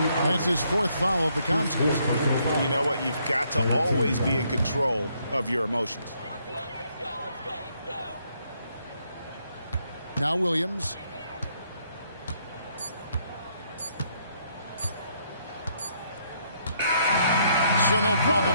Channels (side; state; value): both; inverted; correlation -0.72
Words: That's his 4th foul of the contest. You know what? You've got to always be in control of your emotions. Now Williams. So no problem